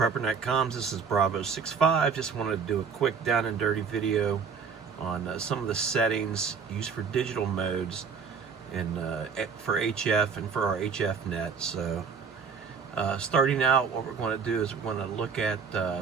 comms, this is Bravo65. Just wanted to do a quick down and dirty video on some of the settings used for digital modes and for HF and for our HF net. So starting out, what we're going to do is we're going to look at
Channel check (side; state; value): left; quieter; 5.8 dB